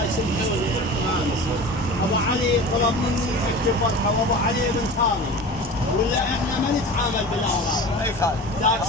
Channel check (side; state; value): both; normal; correlation 0.35